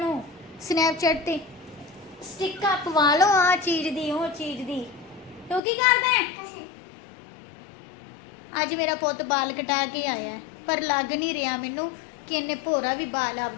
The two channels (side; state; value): right; drops out; at 5.6 s